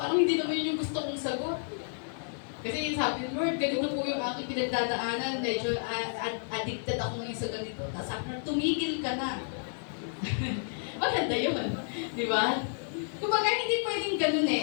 parang hindi naman yun yung gusto kong sagot. Kasi sabi ng Lord, ganito po yung aking pinagdadaanan, medyo addicted ako ngayon sa ganito. Tapos sabi na, tumigil maganda yun. Di ba? Kumbaga, hindi pwedeng ganun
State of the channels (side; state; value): right; silent; digital silence